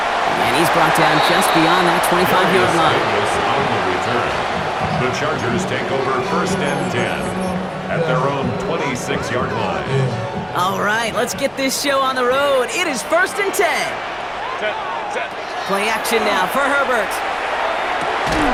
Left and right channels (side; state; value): both; identical; correlation 1.00